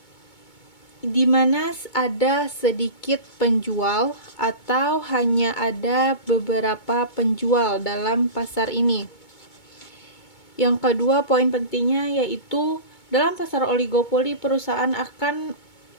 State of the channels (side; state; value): right; late; 2.2 ms